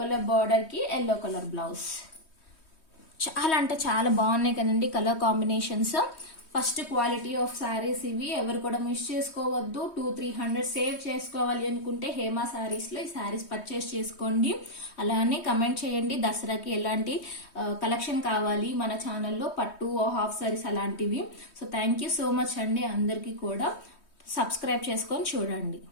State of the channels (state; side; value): late; right; 3.2 ms